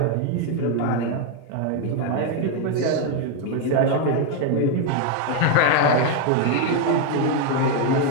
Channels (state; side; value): different; both; correlation 0.01